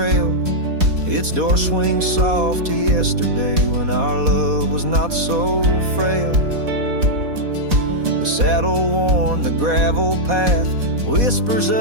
Its door swings soft to yesterday when our love was not so frail. The saddle worn, the gravel path, whispers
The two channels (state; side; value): late; left; 4.1 ms